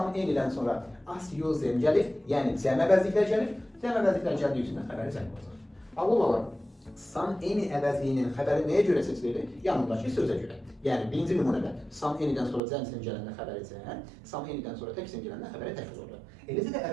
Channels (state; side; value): drops out; left; at 12.6 s